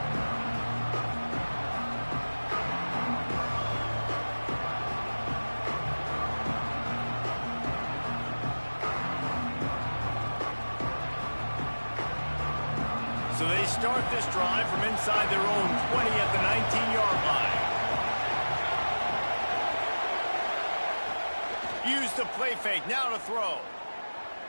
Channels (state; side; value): inverted; both; correlation -1.00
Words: So they start this drive from inside their own 20 at the 19-yard line. Use the play fake, now to throw.